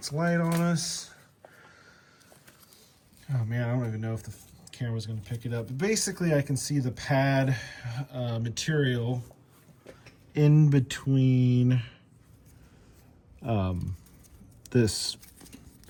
light on us. Oh man, I don't even know if the camera's going to pick it up. But basically, I can see the pad material in between this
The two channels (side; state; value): both; identical; correlation 1.00